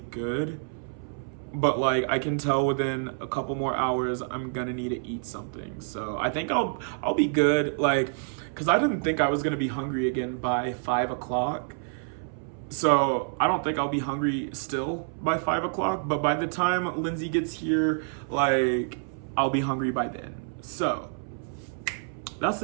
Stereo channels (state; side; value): silent; left; 59 dB below the other